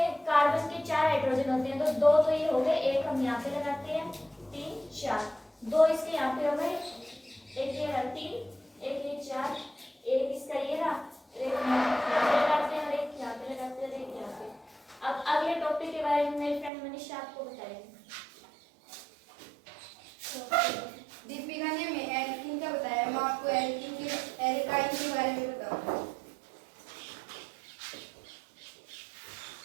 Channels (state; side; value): drops out; left; at 16.7 s